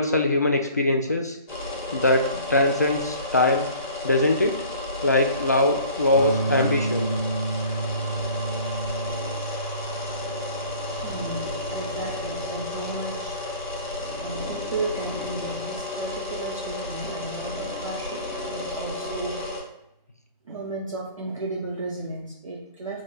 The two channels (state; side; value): inverted; both; correlation -0.47